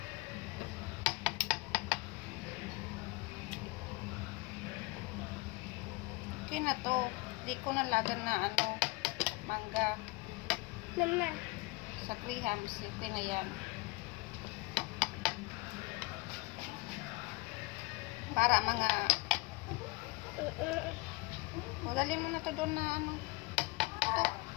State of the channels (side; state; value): right; quieter; 24.0 dB